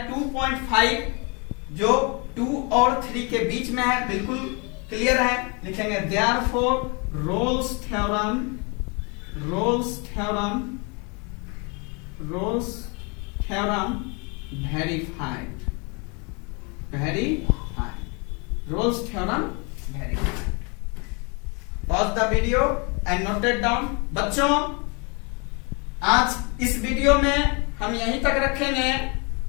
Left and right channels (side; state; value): right; quieter; 32.2 dB